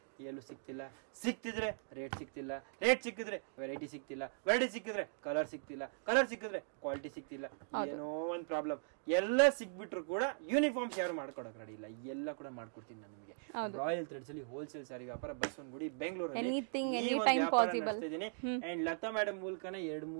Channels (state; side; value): silent; left; digital silence